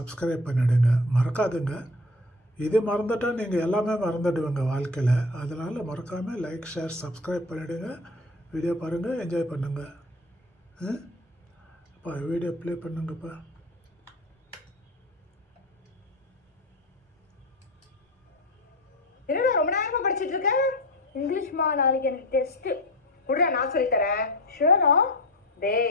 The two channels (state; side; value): normal; both; correlation 0.30